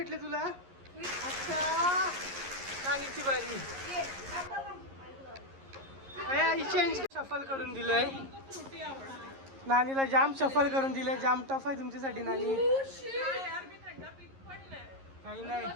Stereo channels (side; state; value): left; late; 11 ms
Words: तुला. अच्छा नानीची बारी. चेंज शफल करून दिलंय. नानीला जाम शफल करून दिलंय. जाम टफ आहे तुमच्यासाठी नानी. काही नाही.